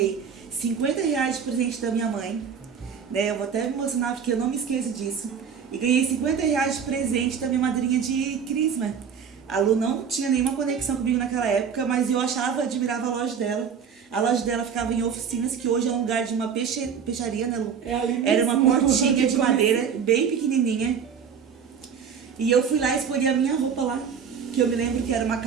R$50 de presente da minha mãe, né? Eu vou até me emocionar porque eu não me esqueço disso. E ganhei R$50 de presente da minha madrinha de crisma. A Lu não tinha nenhuma conexão comigo naquela época, mas eu admirava a loja dela. A loja dela ficava em oficinas, que hoje é um lugar de uma peixaria, né, Lu? Era uma portinha de madeira, bem pequenininha. E eu fui lá e escolhi a minha roupa lá, que eu me lembro que era uma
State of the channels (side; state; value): left; quieter; 7.0 dB